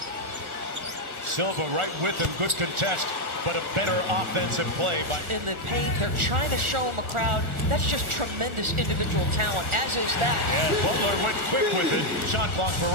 Silva right with him, good contest, but a better offensive play by. In the paint, they're trying to show him a crowd. That's just tremendous individual talent, as is that. Yeah, Butler went quick with it. Shot clock for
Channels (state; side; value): late; left; 1.4 ms